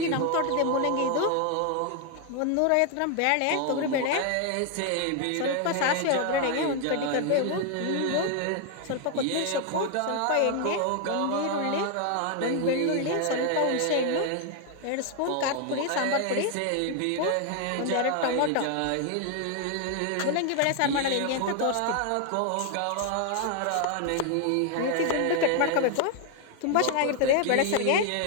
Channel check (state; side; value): different; both; correlation 0.00